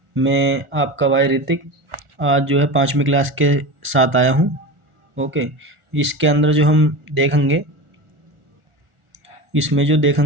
मैं आपका भाई ऋतिक आज जो है 5वीं क्लास के साथ आया हूँ। ओके। इसके अंदर जो हम देखेंगे, इसमें जो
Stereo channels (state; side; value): late; left; 1.4 ms